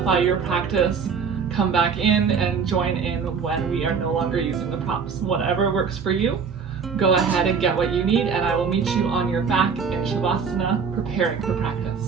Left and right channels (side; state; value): left; quieter; 6.0 dB